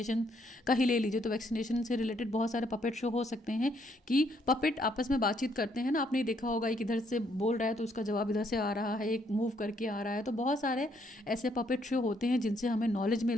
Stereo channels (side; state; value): both; normal; correlation 0.71